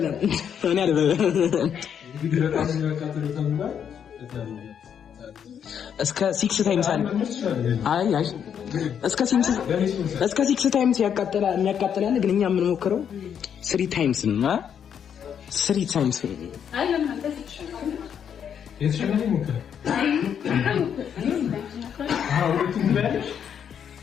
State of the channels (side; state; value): right; quieter; 8.2 dB